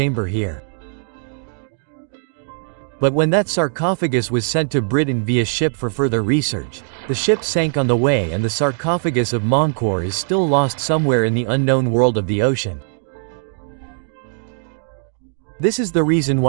here. But when that sarcophagus was sent to Britain via ship for further research, the ship sank on the way, and the sarcophagus of Menkaure is still lost somewhere in the unknown world of the ocean. This is the reason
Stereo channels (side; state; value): left; silent; digital silence